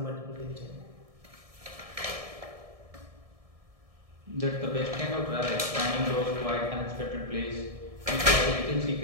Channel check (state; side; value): late; left; 1.7 ms